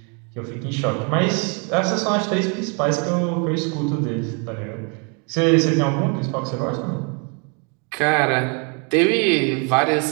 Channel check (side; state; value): left; quieter; 35.8 dB